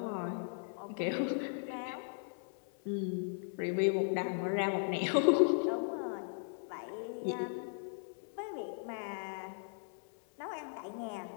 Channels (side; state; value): right; silent; 53 dB below the other